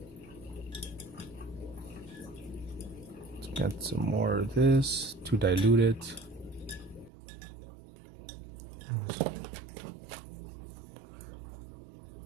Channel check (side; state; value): left; drops out; at 7.1 s